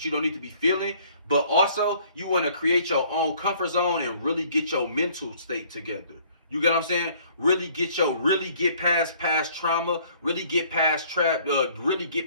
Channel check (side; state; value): both; inverted; correlation -0.58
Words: you don't need to be feeling. But also, you want to create your own comfort zone and really get your mental state together. You get what I'm saying? Really get past trauma, really get past